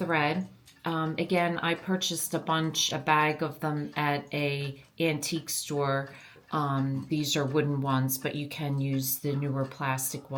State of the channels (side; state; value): both; identical; correlation 1.00